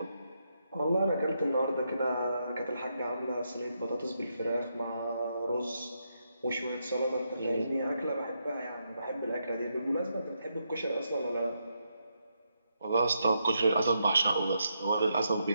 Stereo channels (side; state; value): both; inverted; correlation -0.81